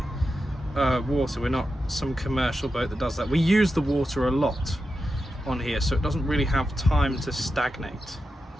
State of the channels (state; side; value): normal; both; correlation 0.90